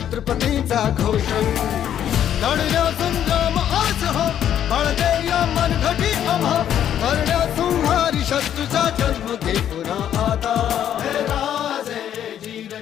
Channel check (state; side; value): quieter; right; 10.2 dB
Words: घोष लढल्या संग्राम आज हो बळदे या मनघटी आम्हा करण्या संहारी शत्रूचा जन्म घे पुन्हा आता हे राजे जीर